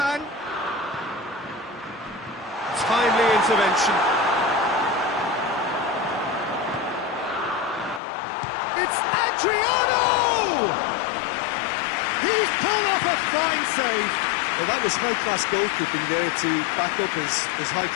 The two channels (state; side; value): drops out; right; at 8.0 s